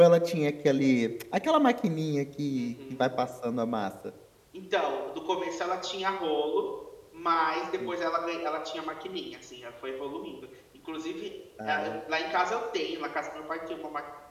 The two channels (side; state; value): both; identical; correlation 1.00